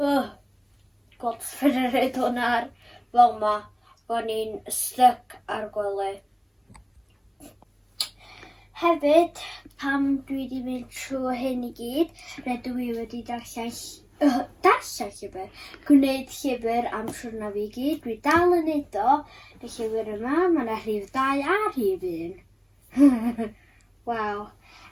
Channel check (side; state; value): both; identical; correlation 1.00